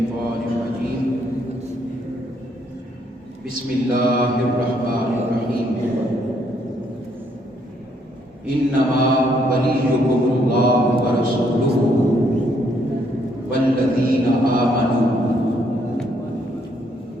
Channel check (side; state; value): both; normal; correlation 0.70